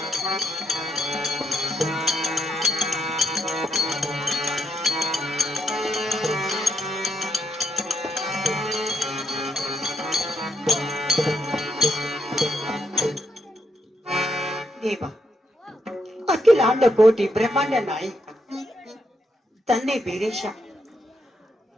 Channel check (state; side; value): normal; both; correlation 0.79